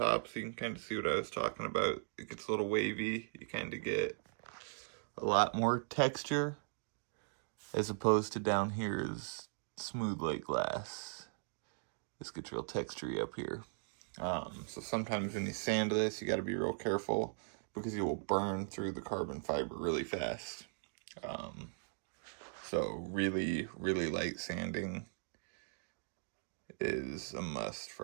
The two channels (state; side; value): silent; left; digital silence